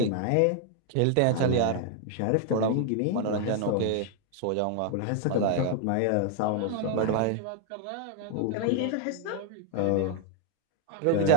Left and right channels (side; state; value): both; different; correlation 0.00